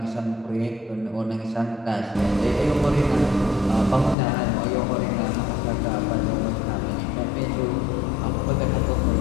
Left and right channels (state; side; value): drops out; right; at 4.2 s